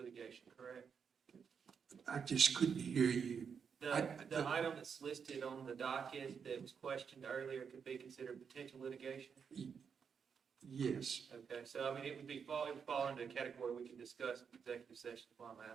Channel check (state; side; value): quieter; left; 6.6 dB